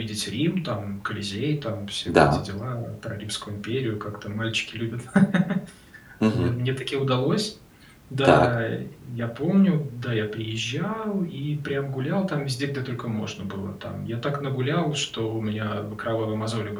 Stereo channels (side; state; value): both; identical; correlation 1.00